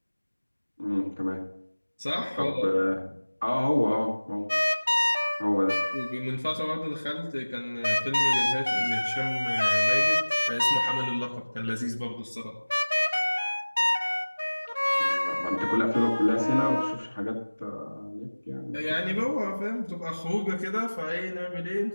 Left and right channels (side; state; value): both; inverted; correlation -1.00